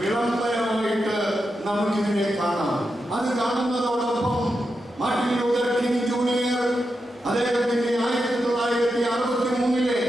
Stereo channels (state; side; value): normal; both; correlation 0.87